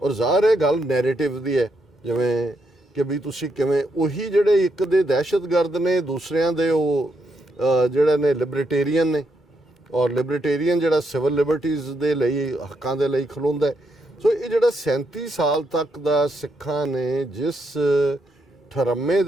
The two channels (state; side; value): normal; both; correlation 0.79